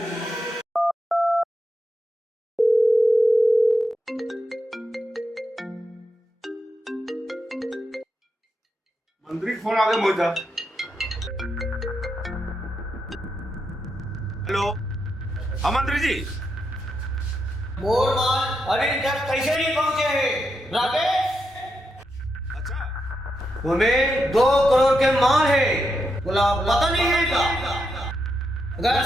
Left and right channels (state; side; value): normal; both; correlation 0.84